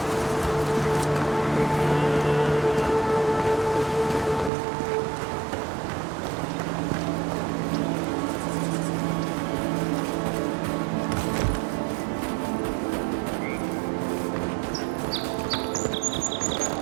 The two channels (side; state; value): left; drops out; at 4.5 s